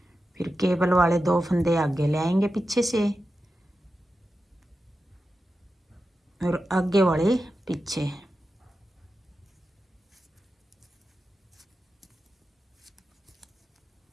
फिर केबल वाले 2 फंदे आगे ले आएंगे पीछे से और आगे वाले पीछे।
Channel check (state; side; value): normal; both; correlation 0.91